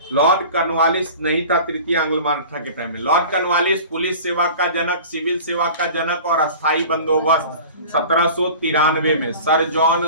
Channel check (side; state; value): both; inverted; correlation -0.40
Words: लॉर्ड कर्नवालिस नहीं था तृतीय आंग्ल मराठा के टाइम में। लॉर्ड कर्नवालिस पुलिस सेवा का जनक, सिविल सेवा का जनक और अस्थायी बंदोबस्त 1793 में सर जॉन